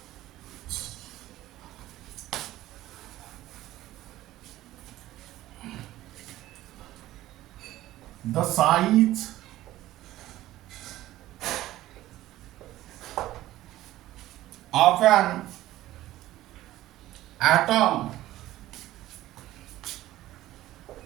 the size of an atom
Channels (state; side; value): quieter; left; 15.3 dB